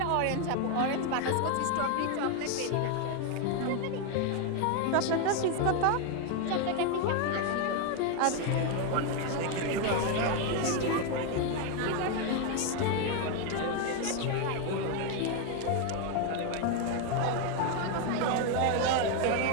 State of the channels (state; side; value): different; both; correlation 0.01